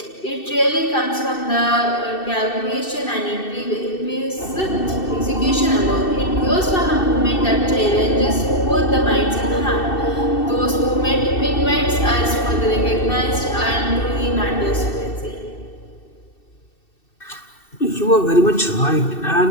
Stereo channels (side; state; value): right; late; 2.7 ms